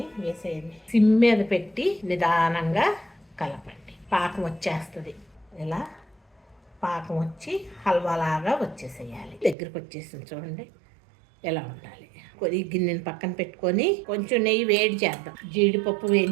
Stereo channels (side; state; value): left; drops out; at 9.6 s